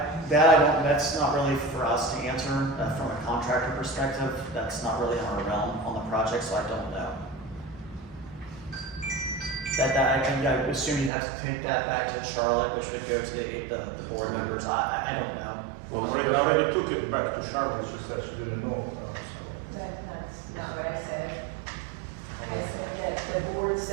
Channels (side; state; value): left; drops out; at 11.1 s